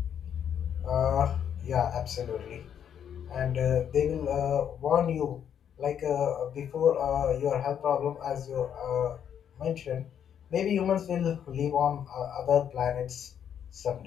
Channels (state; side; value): quieter; right; 8.8 dB